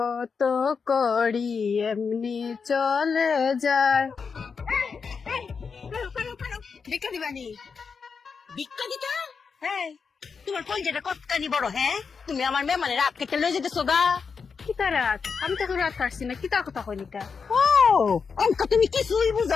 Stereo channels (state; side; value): quieter; right; 5.6 dB